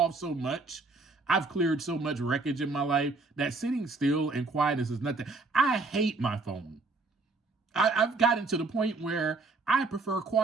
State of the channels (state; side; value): quieter; left; 3.6 dB